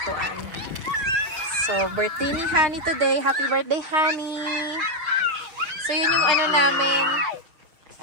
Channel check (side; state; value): left; late; 6.6 ms